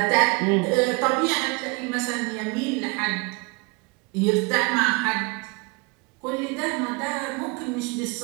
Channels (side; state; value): left; quieter; 28.1 dB